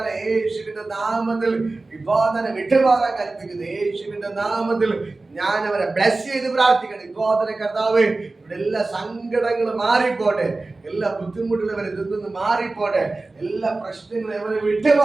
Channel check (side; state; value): left; quieter; 3.3 dB